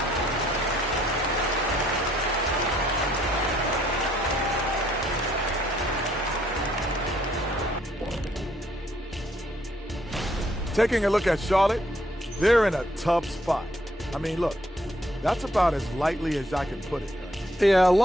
Taking a look at Charlotte, they're in a tough spot. I mean, look, that's about as lightly as I can put it. Yeah, a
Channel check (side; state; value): both; normal; correlation 0.68